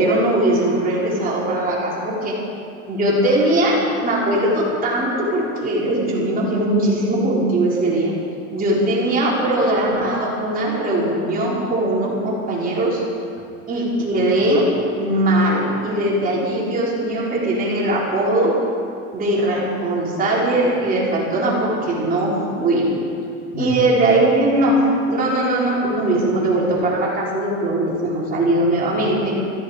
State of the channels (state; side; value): normal; both; correlation 0.20